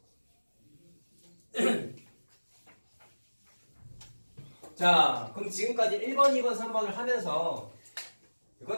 자, 그럼 지금까지 1번, 2번, 3번을 하면서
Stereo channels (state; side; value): inverted; both; correlation -1.00